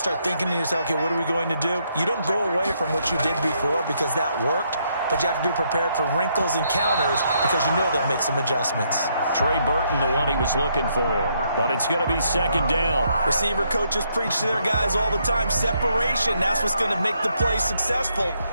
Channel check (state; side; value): inverted; both; correlation -0.74